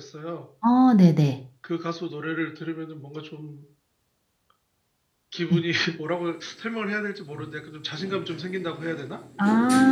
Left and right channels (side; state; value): both; identical; correlation 1.00